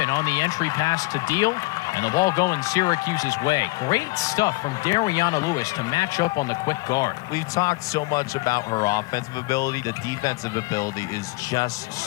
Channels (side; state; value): right; quieter; 23.4 dB